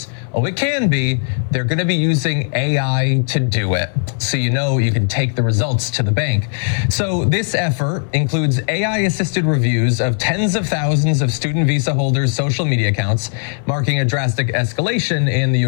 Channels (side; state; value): right; silent; 60 dB below the other